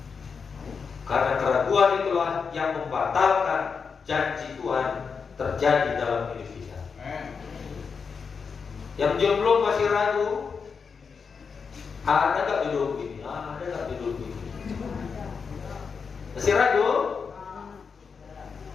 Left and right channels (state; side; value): quieter; right; 5.6 dB